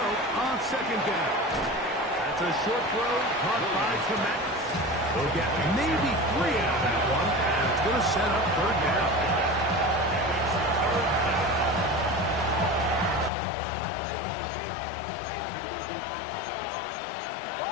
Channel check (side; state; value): right; drops out; at 13.3 s